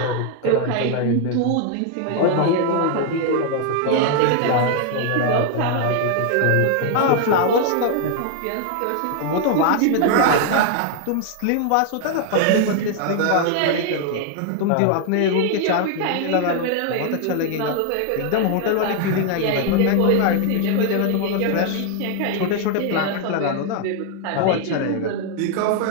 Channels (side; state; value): both; different; correlation 0.00